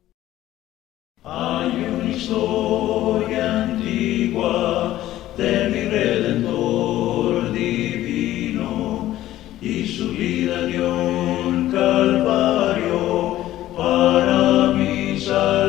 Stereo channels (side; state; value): right; quieter; 14.3 dB